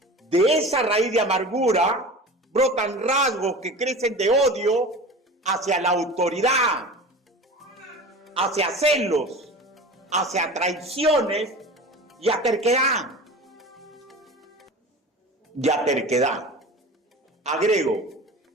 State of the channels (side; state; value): both; normal; correlation 0.35